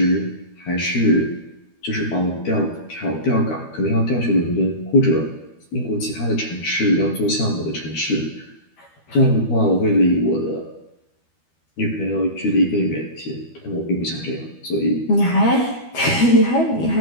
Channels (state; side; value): late; right; 12 ms